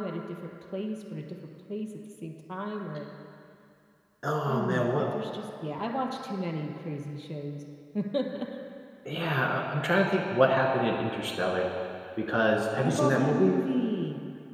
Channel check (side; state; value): both; identical; correlation 1.00